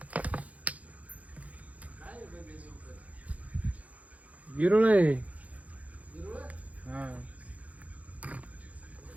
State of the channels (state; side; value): late; left; 0.069 ms